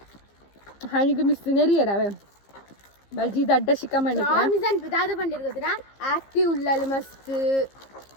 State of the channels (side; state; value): right; late; 15 ms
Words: ಹಣಿಗೆ ಮಿಸ್ ನೆರಿಯರವೆ ಬಲ್ಜಿ ದಡ್ಡ ಶಿಖಮಣಿ ರಾಮಿಜಾನ್ ದಾದ ಪಂಡಿರ್ ಗೊತ್ತಿನ ಆಕ್ಟಿವ್ ಉಳ್ಳಲ್ ಮಸ್ತ್